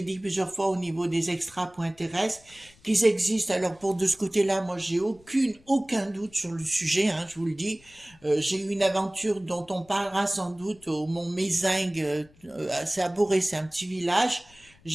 dit plusieurs fois au niveau des extra.terrestres, qu'ils existent. Alors, pour de ce côté-là, moi, j'ai aucun doute sur le sujet. Hein, je vous le dis. J'ai eu une aventure dont on parlera sans doute au Mont Mézingue. C'est à Boré, c'est un petit village.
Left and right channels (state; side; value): noise; left; rumble, 28 dB below the sound